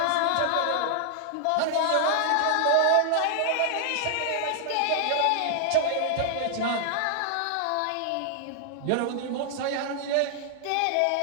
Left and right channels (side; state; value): both; different; correlation 0.00